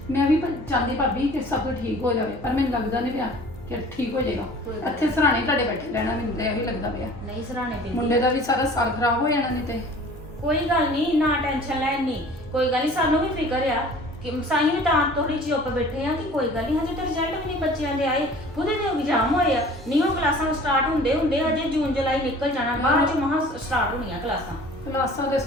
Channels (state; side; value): normal; both; correlation 0.47